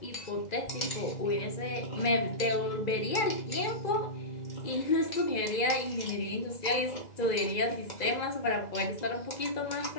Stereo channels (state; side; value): late; right; 2.0 ms